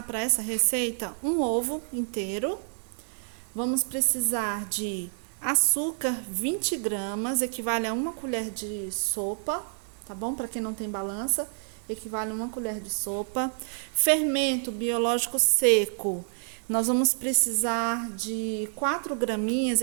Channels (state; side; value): silent; left; 59 dB below the other